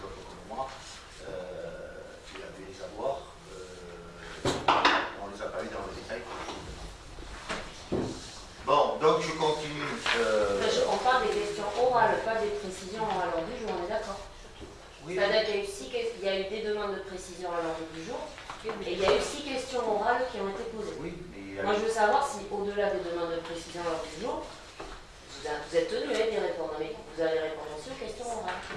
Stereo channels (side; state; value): both; identical; correlation 1.00